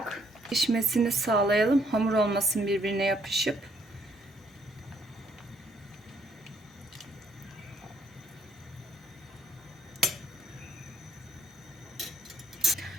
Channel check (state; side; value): normal; both; correlation 0.69